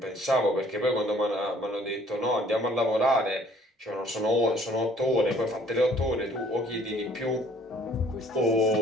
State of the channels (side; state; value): both; normal; correlation 0.57